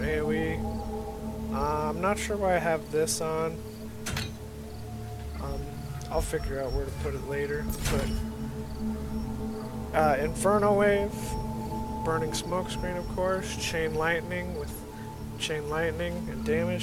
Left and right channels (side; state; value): both; identical; correlation 1.00